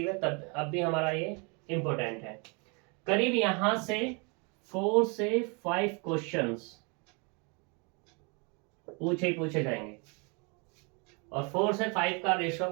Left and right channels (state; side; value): quieter; left; 32.9 dB